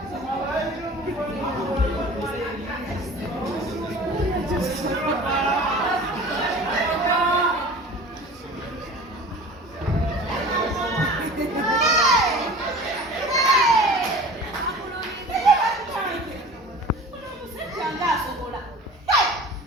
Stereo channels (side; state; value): both; normal; correlation 0.41